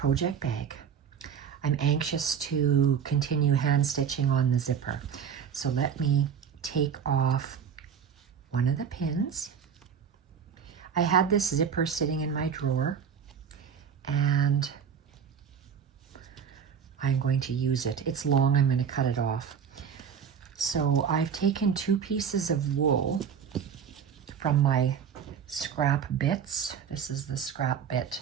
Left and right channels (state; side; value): quieter; left; 7.4 dB